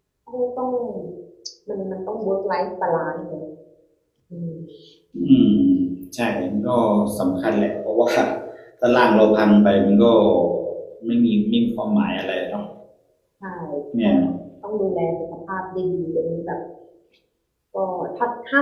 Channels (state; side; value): identical; both; correlation 1.00